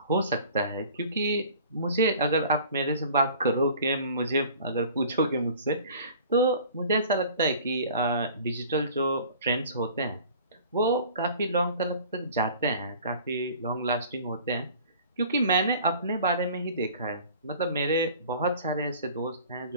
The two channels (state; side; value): inverted; both; correlation -0.47